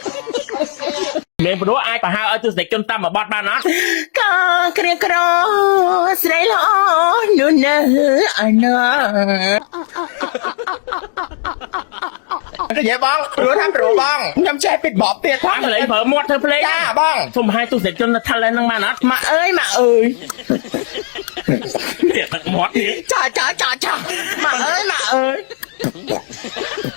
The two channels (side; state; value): right; silent; digital silence